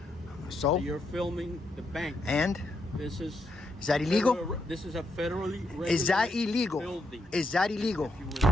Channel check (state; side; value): normal; both; correlation 0.79